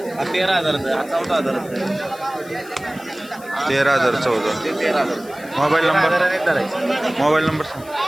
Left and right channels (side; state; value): left; noise; hiss, 21 dB below the sound